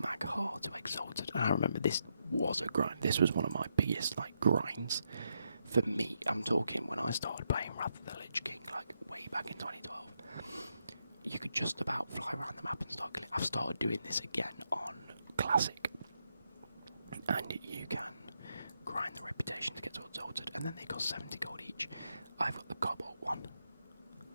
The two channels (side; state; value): both; inverted; correlation -0.81